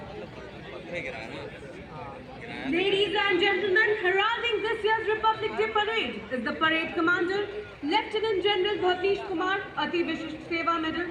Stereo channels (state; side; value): identical; both; correlation 1.00